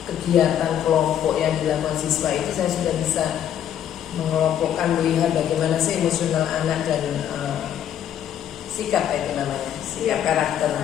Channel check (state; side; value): quieter; right; 10.1 dB